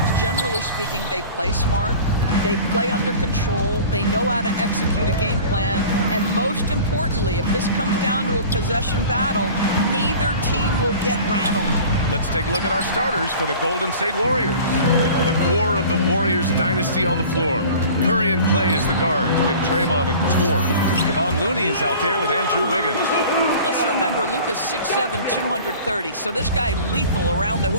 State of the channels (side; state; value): both; inverted; correlation -0.42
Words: generally speaking, they play smart, they play under control, they know how to execute a game plan, and most importantly, if this comes down to a possession battle, neither team will get rattled. Let's take a look at our starters for the Golden State Warriors. The core of the Warriors dynasty on the floor. Curry and Clay as the guards with Draymond at the 4. Kevon Looney is out there with Andrew Wiggins. Let's remember, Luka's 6'7", 230, so this guy lethal around the